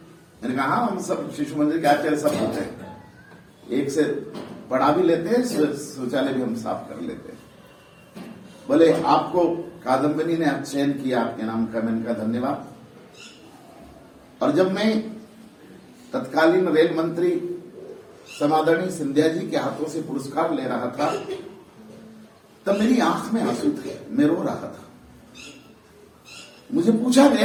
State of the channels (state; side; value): identical; both; correlation 1.00